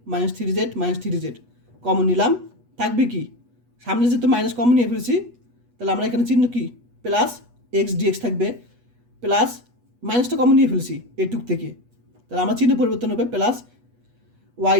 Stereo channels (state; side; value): late; left; 8.2 ms